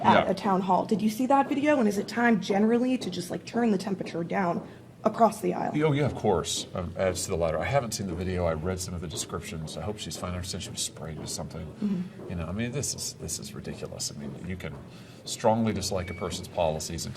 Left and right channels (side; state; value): both; identical; correlation 1.00